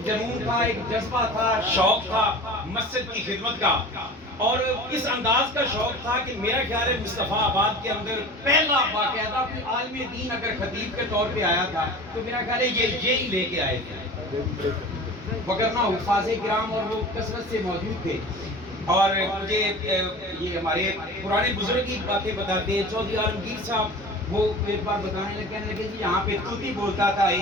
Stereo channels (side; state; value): both; normal; correlation 0.37